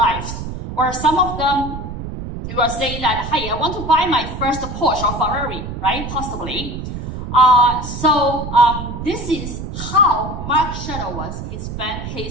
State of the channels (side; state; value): right; noise; rumble, 7 dB below the sound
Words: Or some of them, you are saying that, hey, I want to buy my first Porsche or Ferrari, right? Possibly. This is how Mark Shuttleworth he spent